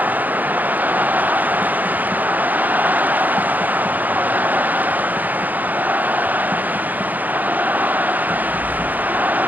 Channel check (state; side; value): late; left; 0.083 ms